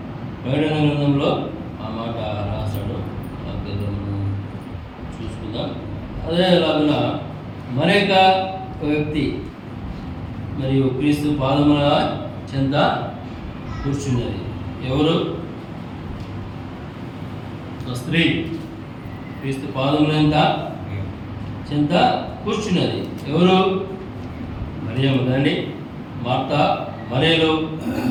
ప్రకటన గ్రంథంలో ఆ మాట రాశాడు. మనం చూసుకుందాం. అదేలాగా మరొక వ్యక్తి మరియు క్రీస్తు పాదముల చెంత కూర్చున్నది. ఎవరు? స్త్రీ క్రీస్తు పాదముల చెంత కూర్చున్నది. ఎవరు? మరియమ్మ కదండి. మార్తా, మరియలు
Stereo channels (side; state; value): both; identical; correlation 1.00